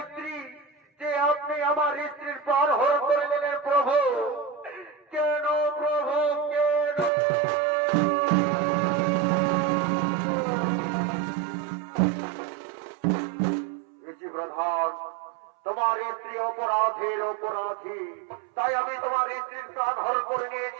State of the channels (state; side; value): drops out; left; at 7.1 s